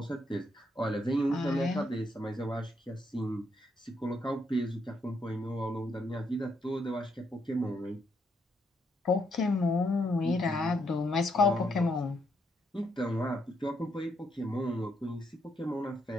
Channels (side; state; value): both; normal; correlation 0.76